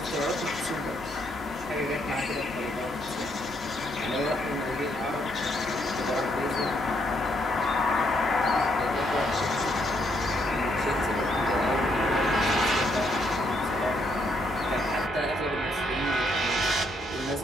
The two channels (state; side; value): normal; both; correlation 0.74